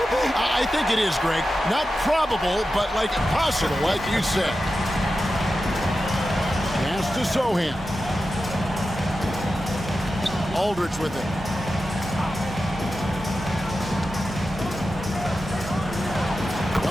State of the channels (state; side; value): normal; both; correlation 0.91